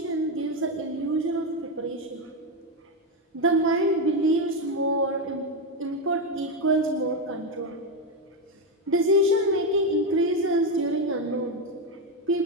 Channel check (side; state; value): both; normal; correlation 0.08